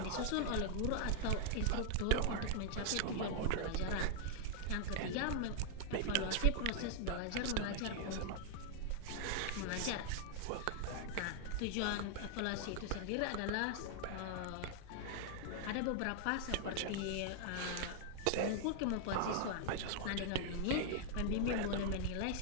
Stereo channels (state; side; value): different; both; correlation -0.01